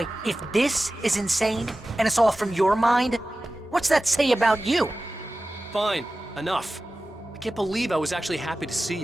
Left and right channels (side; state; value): both; normal; correlation 0.95